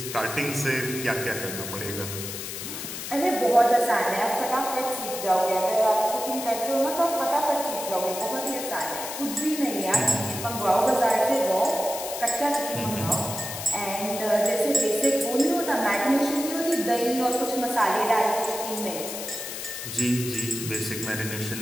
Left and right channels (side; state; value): left; noise; hiss, 7 dB below the sound